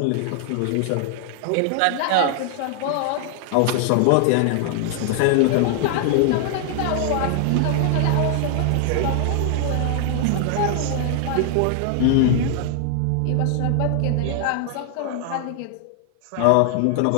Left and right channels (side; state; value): both; different; correlation 0.00